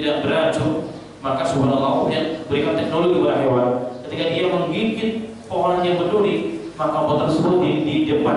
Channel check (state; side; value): identical; both; correlation 1.00